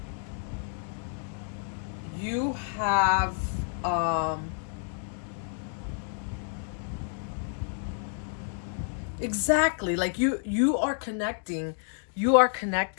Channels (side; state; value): right; silent; 56 dB below the other